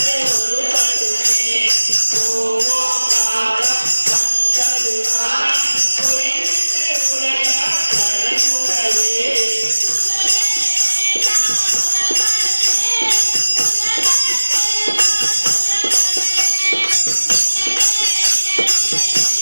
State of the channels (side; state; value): both; inverted; correlation -1.00